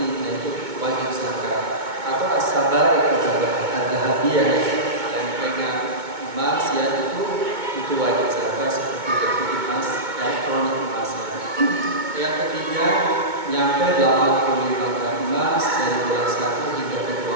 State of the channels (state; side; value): late; left; 2.2 ms